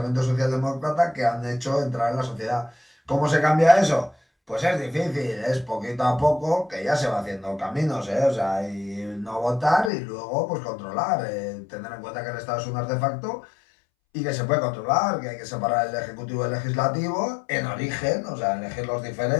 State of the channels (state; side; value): drops out; right; at 9.9 s